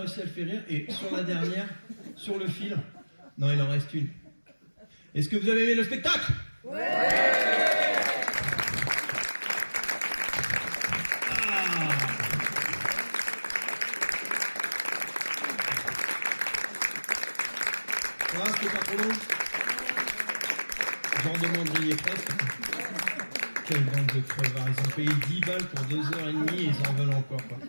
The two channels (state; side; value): inverted; both; correlation -1.00